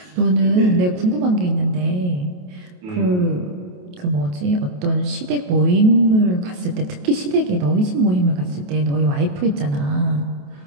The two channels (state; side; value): late; left; 28 ms